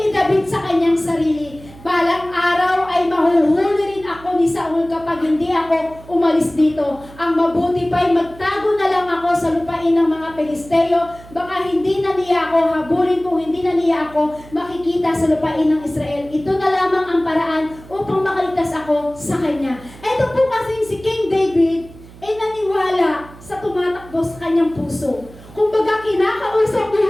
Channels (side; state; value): right; noise; hum, 20 dB below the sound